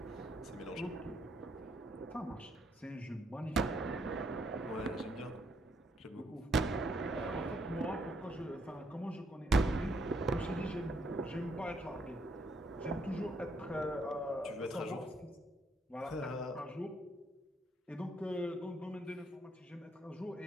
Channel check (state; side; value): normal; both; correlation 0.72